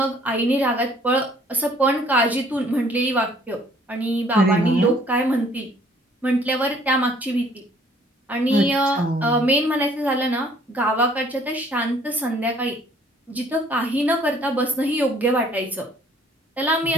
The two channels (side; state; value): both; normal; correlation 0.59